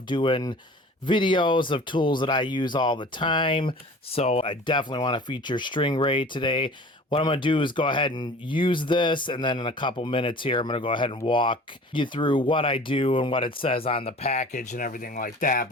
doing videos of tools that I use all the time, so I definitely want to feature stringray today. What I'm going to do is go ahead and use this, and then in a couple minutes here, I'm going to go ahead and walk you through what I do and what it says on the package and everything like that.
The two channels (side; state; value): both; normal; correlation 0.44